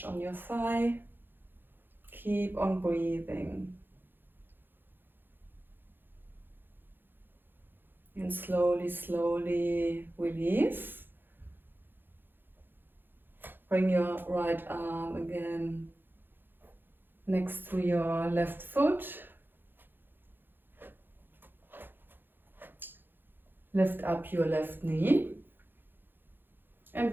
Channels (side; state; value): left; late; 0.097 ms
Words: on your thigh. Keep on breathing. And slowly, slowly release. Bring your right arm again next to your left foot. Lift up your left knee. And